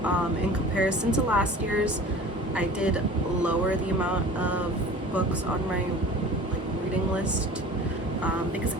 In comparison to last year's, I did lower the amount of books on my reading list, because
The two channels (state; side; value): normal; both; correlation 0.41